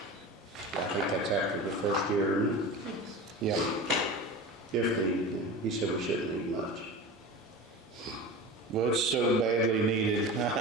I think that's after the first year, isn't it? Yep. If needed, he said we shouldn't need much. Well, it's so badly needed.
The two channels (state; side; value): normal; both; correlation 0.31